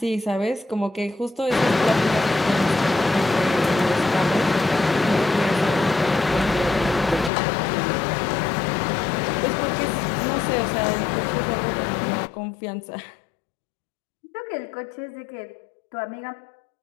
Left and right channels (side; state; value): right; drops out; at 7.3 s